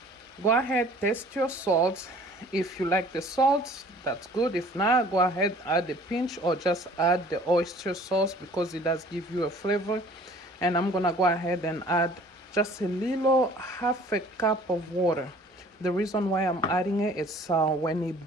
Go ahead, taste your salt. If you like the salt, that's good. If not, go ahead, add a pinch, or just add the oyster sauce, because it does give you a flavor. And I'm gonna go ahead and add just a little, half a cup of water. The reason why I'm adding it is when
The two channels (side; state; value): both; normal; correlation 0.51